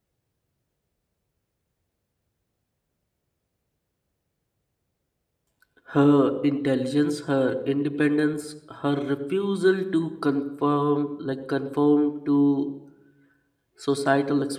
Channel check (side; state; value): both; identical; correlation 1.00